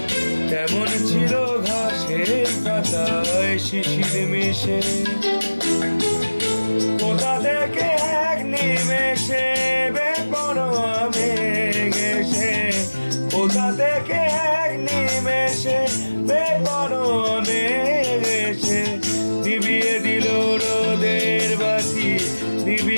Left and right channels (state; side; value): inverted; both; correlation -1.00